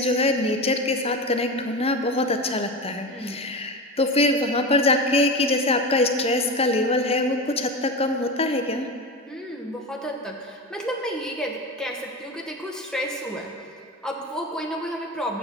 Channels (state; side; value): normal; both; correlation 0.24